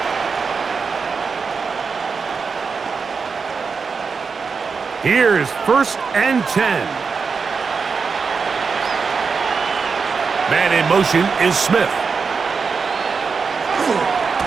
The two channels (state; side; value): quieter; left; 5.2 dB